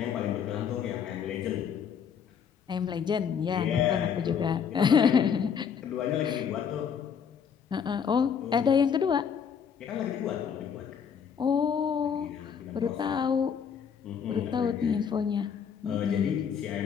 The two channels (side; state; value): right; quieter; 7.3 dB